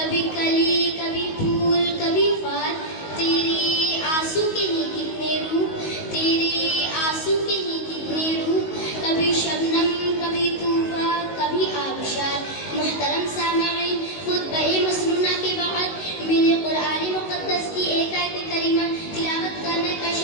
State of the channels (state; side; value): late; right; 19 ms